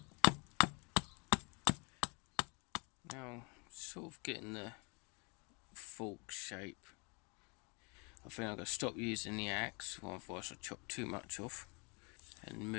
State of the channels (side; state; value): right; quieter; 32.4 dB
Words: Now sort of getting the fork shape. I think I'm going to stop using the axe, otherwise I'll chop too much off, and